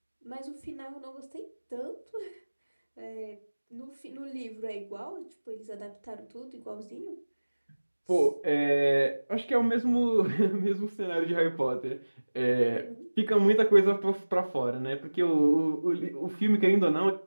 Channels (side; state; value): both; inverted; correlation -1.00